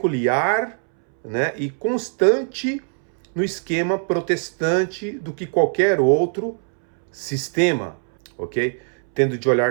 né, e constante no esquema protestante do que qualquer outro sistema, ok? Tendo de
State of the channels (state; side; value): silent; left; 65 dB below the other